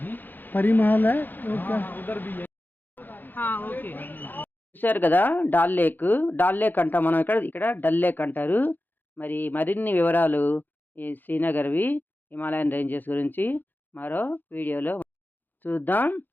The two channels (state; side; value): late; right; 0.088 ms